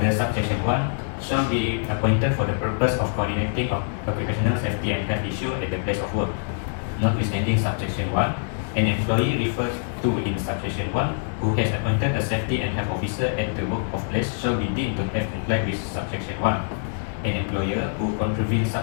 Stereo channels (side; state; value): right; silent; digital silence